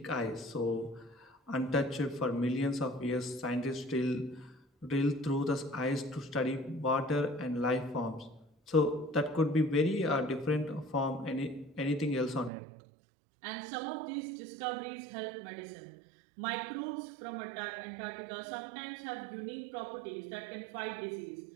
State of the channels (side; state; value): left; drops out; at 12.5 s